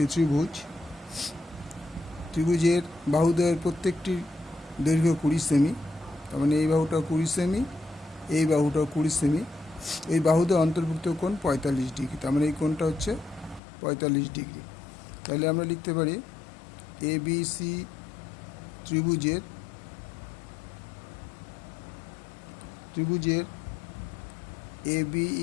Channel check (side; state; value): right; drops out; at 13.6 s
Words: ত্রিভুজের বাহুদ্বয়ের প্রত্যেকটির দৈর্ঘ্য 20 সেমি। তার মানে এই বাহুটা 20 সেমি, এই বাহুটাও 20 সেমি। এই বাহুদ্বয় অন্তর্ভুক্ত কোণ 45 ডিগ্রি, তার মানে এই কোণটা হচ্ছে 45 ডিগ্রি। তাহলে আমরা লিখতে পারি এ বি সি ত্রিভুজের A B